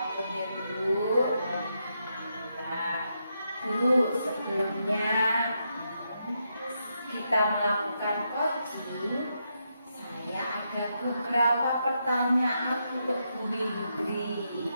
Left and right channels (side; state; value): both; inverted; correlation -0.82